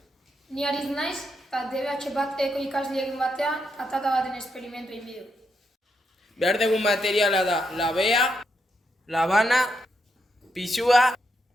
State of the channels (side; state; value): both; normal; correlation 0.80